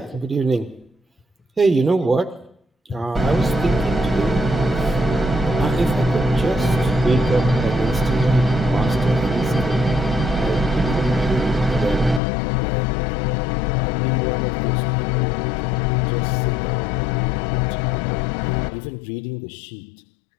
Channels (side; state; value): right; drops out; at 12.2 s